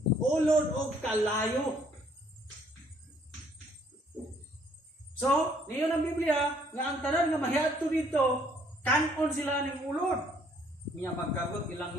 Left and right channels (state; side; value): normal; both; correlation 0.64